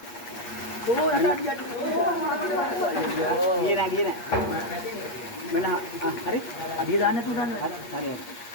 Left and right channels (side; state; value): right; late; 8.4 ms